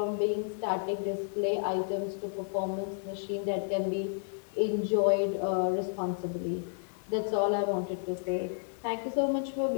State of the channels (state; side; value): silent; right; digital silence